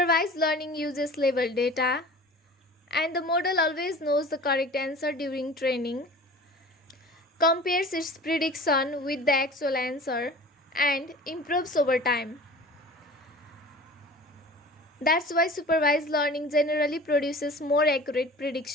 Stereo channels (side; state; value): both; normal; correlation 0.41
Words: learning uses labeled data, and the model always knows the correct answer during training, compares its prediction with the actual answer, and improves over time. That's why supervised learning generally produces more accurate